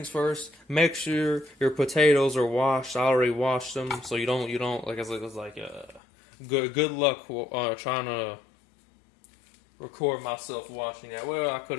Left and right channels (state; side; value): drops out; right; at 6.0 s